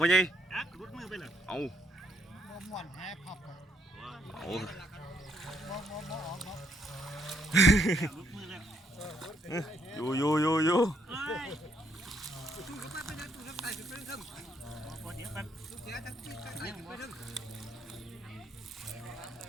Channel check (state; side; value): normal; both; correlation 0.72